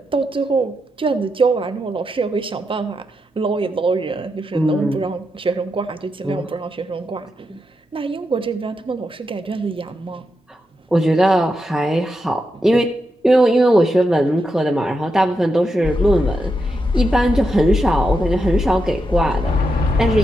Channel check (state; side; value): normal; both; correlation 0.85